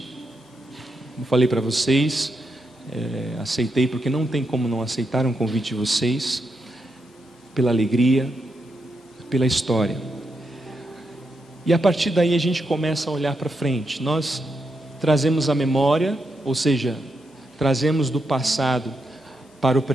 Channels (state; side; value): normal; both; correlation 0.83